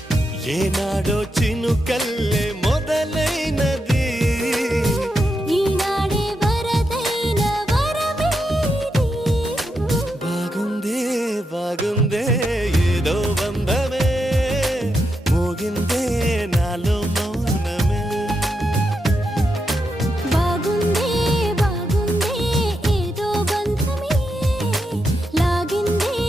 ఏనాడో చినుకల్లే మొదలైనది ఈనాడే వరదైన వరమేది బాగుందే బాగుందే ఏదో బంధమే మోగిందే నాలో మౌన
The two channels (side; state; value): both; normal; correlation 0.84